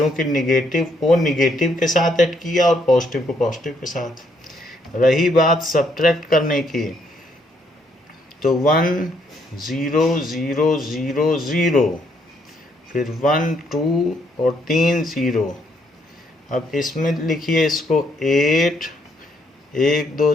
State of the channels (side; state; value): both; normal; correlation 0.72